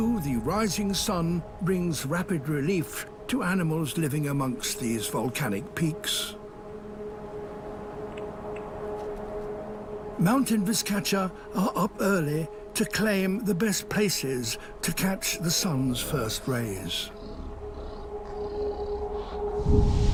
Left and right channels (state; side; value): identical; both; correlation 1.00